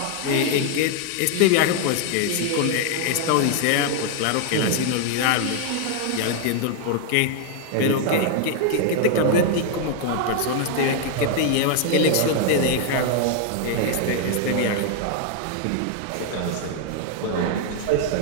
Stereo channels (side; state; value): both; different; correlation 0.00